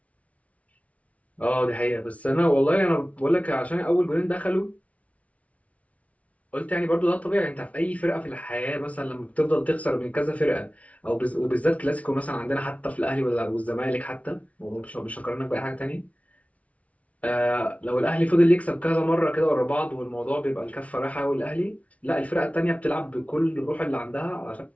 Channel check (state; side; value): late; right; 0.066 ms